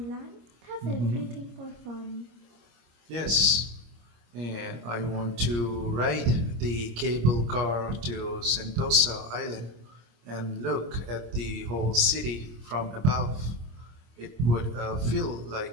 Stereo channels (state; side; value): late; left; 26 ms